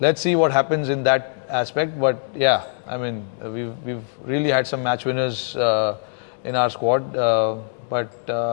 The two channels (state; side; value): silent; right; digital silence